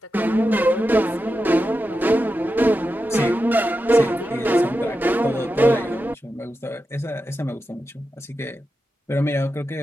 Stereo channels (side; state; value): both; normal; correlation 0.90